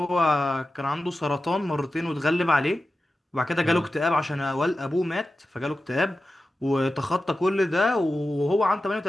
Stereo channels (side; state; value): both; normal; correlation 0.93